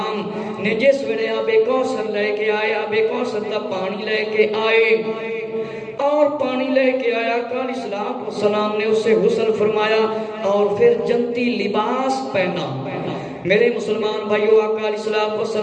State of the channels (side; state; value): both; identical; correlation 1.00